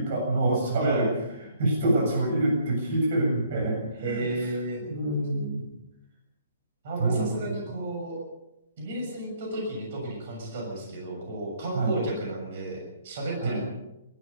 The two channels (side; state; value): both; inverted; correlation -0.66